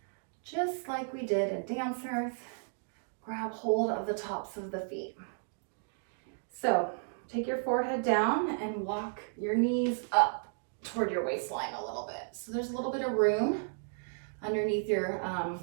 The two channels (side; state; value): left; silent; digital silence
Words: just like we did in dancers. Grab hold of the tops of the feet. So take your forehead down and walk your knees up toward your waistline a little bit. So there's a little bit of room underneath your